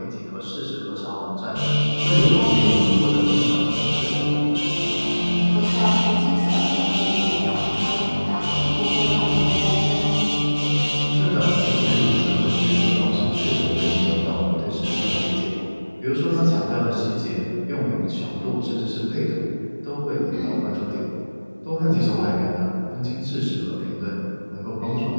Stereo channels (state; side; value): inverted; both; correlation -1.00